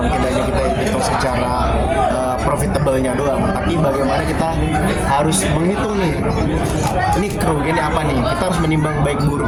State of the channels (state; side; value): identical; both; correlation 1.00